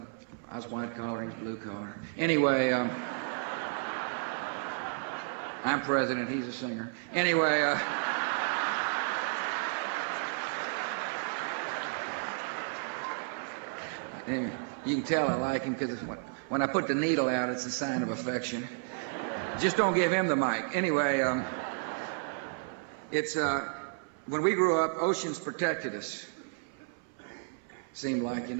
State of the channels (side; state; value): left; silent; 56 dB below the other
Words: was white collar and blue collar. Anyway, I'm president, he's a singer. Anyway, you can tell I like him because when I put the needle out, it's a sign of affection. Just don't give him the mic. Anyway, it's when we grew up, oceans protected us. Seemed